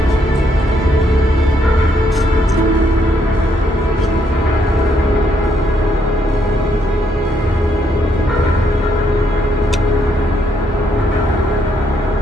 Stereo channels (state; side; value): normal; both; correlation 0.73